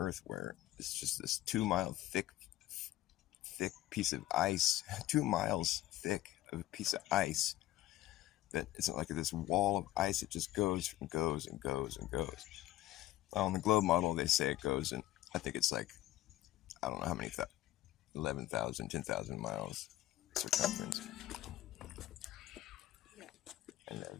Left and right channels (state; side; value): quieter; right; 14.8 dB